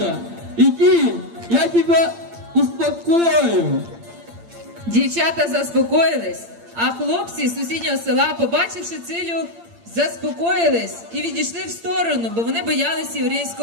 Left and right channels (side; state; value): left; late; 8.7 ms